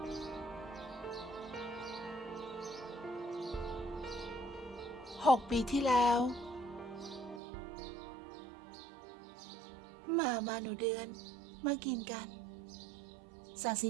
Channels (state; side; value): drops out; left; at 7.4 s